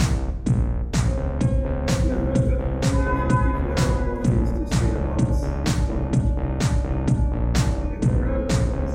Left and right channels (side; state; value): both; identical; correlation 1.00